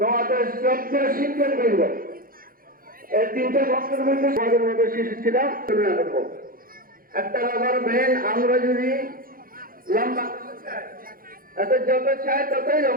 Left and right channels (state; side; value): late; left; 0.42 ms